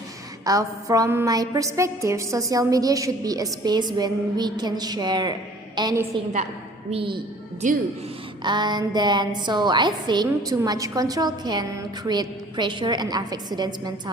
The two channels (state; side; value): normal; both; correlation 0.52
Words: From my perspective, social media should be a space when we can share anything that we do. And then, so I think too much control can create pressure and affect students'